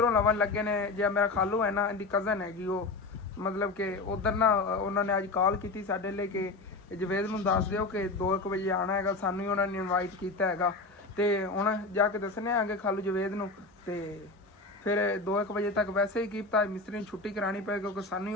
ਲਵਣ ਲੱਗੇ ਨੇ ਜੇ ਮੇਰਾ ਖਾਲੂ ਹੈ ਨਾ ਇਹਦੀ ਕਜ਼ਨ ਹੈਗੀ ਉਹ ਮਤਲਬ ਕਿ ਉਧਰ ਨਾ ਉਹਨਾਂ ਨੇ ਅੱਜ ਕਾਲ ਕੀਤੀ ਸਾਡੇ ਲਈ ਕਿ ਜਵੇਦ ਨੂੰ ਦੱਸ ਦਿਓ ਕਿ 2:00 ਵਜੇ ਆਉਣਾ ਹੈਗਾ ਸਾਨੂੰ ਹੀ ਉਹਨਾਂ ਨੇ ਇਨਵਾਈਟ ਕੀਤਾ ਹੈਗਾ ਤੇ ਹੁਣ ਜਾ ਕੇ ਦੱਸਣੇ ਆਂਗੇ ਖਾਲੂ ਜਵੇਦ ਨੂੰ ਤੇ ਫਿਰ 2:00 ਵਜੇ ਤੱਕ ਵੈਸੇ ਹੀ ਕੀਤਾ ਮਿਸਤਰੀ ਨੂੰ ਛੁੱਟੀ ਕਰਾਣੀ ਪਏਗੀ ਕਿਉਂਕਿ ਸਾਨੂੰ ਹੀ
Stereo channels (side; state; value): right; quieter; 3.4 dB